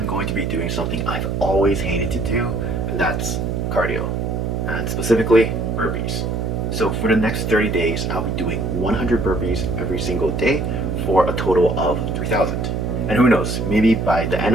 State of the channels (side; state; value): right; noise; hum, 1 dB below the sound